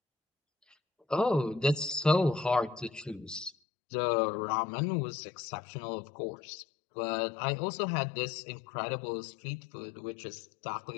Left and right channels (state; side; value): drops out; right; at 3.6 s